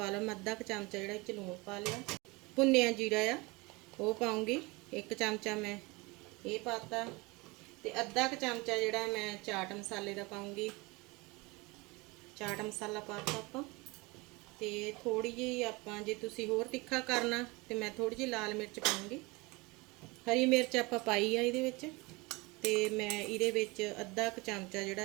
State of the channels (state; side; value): quieter; left; 24.9 dB